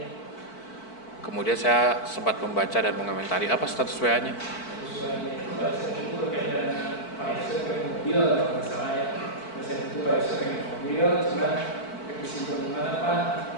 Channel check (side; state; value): right; late; 4.5 ms